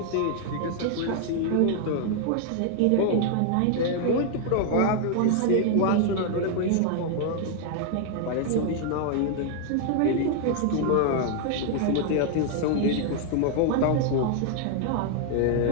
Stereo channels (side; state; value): both; different; correlation 0.00